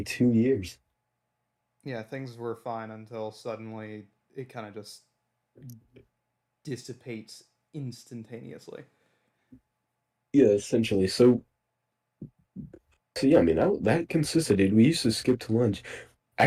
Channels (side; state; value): both; identical; correlation 1.00